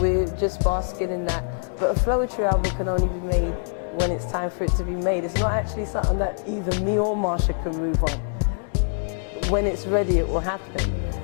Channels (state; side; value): silent; right; digital silence